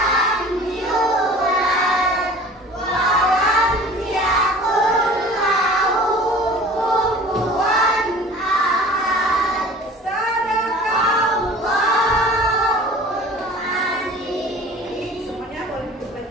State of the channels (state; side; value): normal; both; correlation 0.43